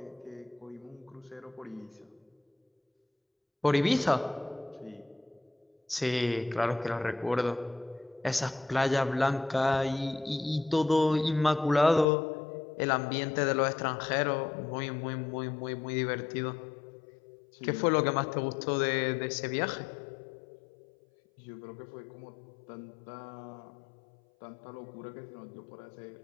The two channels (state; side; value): drops out; right; at 12.1 s